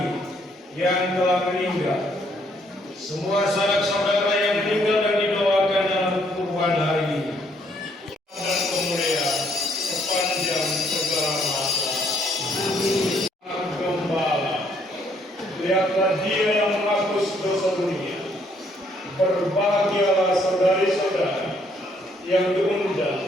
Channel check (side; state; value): both; normal; correlation 0.68